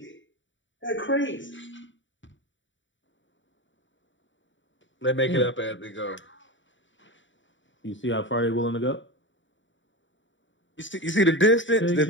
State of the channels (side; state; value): right; late; 0.55 ms